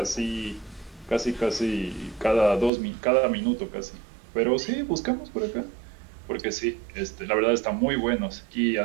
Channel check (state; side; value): drops out; left; at 2.7 s